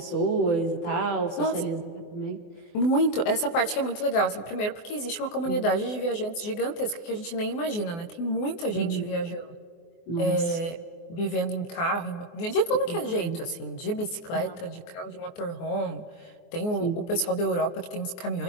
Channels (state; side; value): late; right; 24 ms